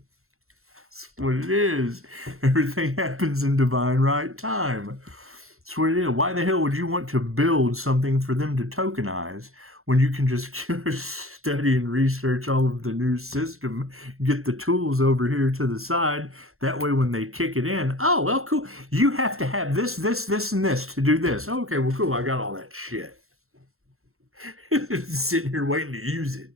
That's what it is. Everything happens in divine right time. That's what it is. Why the hell would you want to build something for them to tokenize when you can just study and research all of the new system, get the tools over here to the side? That way when they kick it in, oh, well, cool. You have to have this, and this to do this. Okay, well, cool. I got all that shit. Sitting here waiting to use it.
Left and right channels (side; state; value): left; late; 0.62 ms